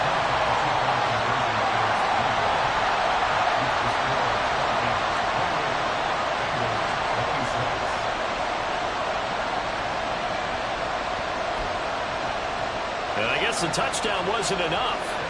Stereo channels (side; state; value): both; identical; correlation 1.00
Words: And I guess the touchdown wasn't enough.